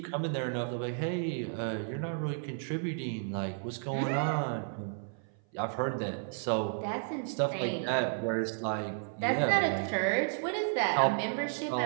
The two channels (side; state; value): left; silent; 56 dB below the other